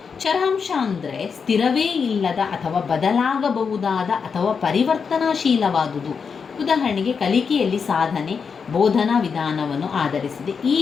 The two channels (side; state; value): right; quieter; 5.9 dB